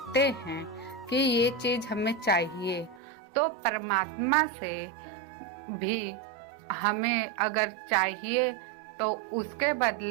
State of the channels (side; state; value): left; drops out; at 3.0 s